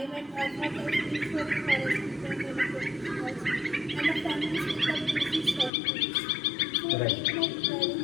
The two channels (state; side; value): drops out; right; at 5.7 s